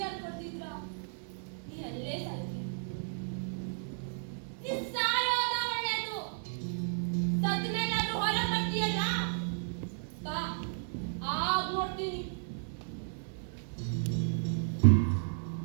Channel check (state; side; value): silent; left; 55 dB below the other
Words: ಕೊಡ್ತಿದ್ರ ನೀ ಅಲ್ಲೇ ಸಾಯ್ತಿ. ನೀ ಸಾಯೋದ ಒಳ್ಳೇದು. ಸತ್ ಮೇಲಾದ್ರೂ ಹೊರ ಬರ್ತೀಯಲ್ಲ, ಬಾ ಆಗ ನೋಡ್ತೀನಿ.